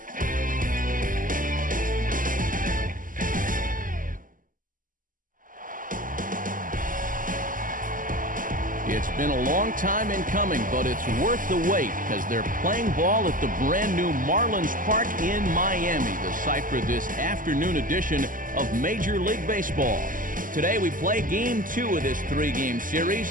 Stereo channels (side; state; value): left; late; 0.39 ms